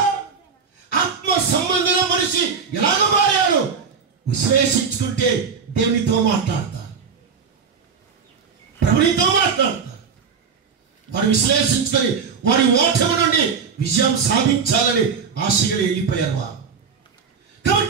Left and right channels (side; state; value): left; quieter; 6.0 dB